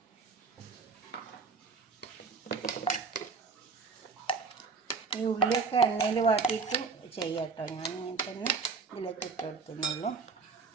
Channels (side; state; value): left; quieter; 4.7 dB